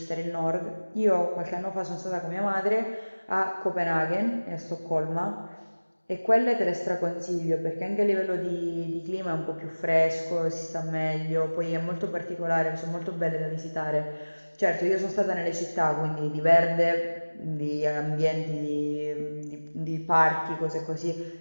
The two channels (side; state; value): both; inverted; correlation -1.00